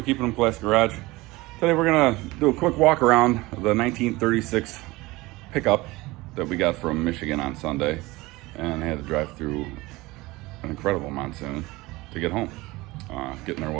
Keepinemclassic Garage. Today we're gonna do a quick walk around the 1936 pickup that we got from Michigan on Sunday, and I had to drive through an incredible monsoon to get home. Getting there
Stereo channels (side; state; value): left; quieter; 21.0 dB